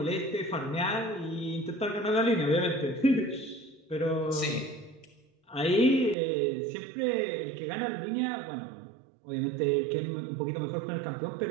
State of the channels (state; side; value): drops out; left; at 6.2 s